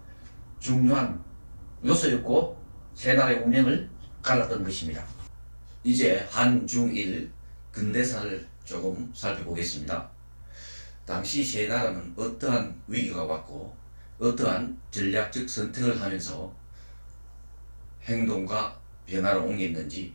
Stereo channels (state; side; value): inverted; both; correlation -1.00